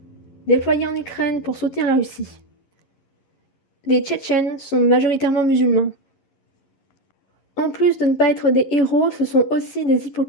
déployés en Ukraine pour soutenir la Russie. Les Tchétchènes sont majoritairement musulmans. En plus de ne pas être des héros, ce sont aussi des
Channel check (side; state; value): right; late; 11 ms